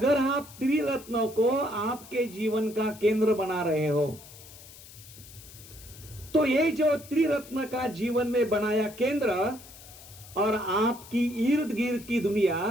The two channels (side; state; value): left; noise; hiss, 19 dB below the sound